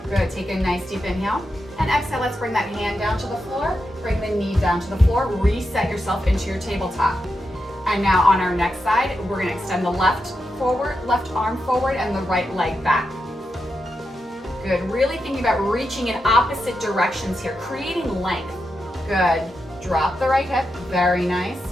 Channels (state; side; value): normal; both; correlation 0.87